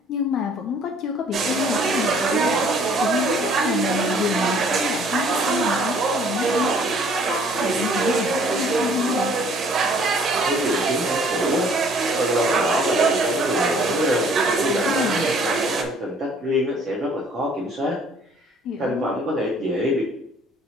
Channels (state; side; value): normal; both; correlation 0.58